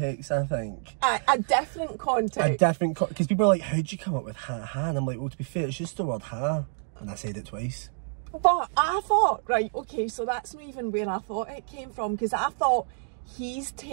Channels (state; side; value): silent; left; digital silence